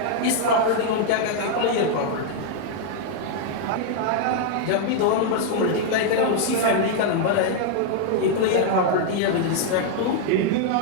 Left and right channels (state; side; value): different; both; correlation 0.00